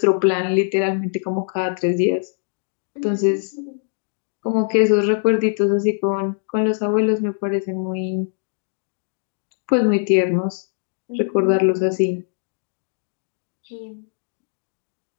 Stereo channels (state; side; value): silent; right; digital silence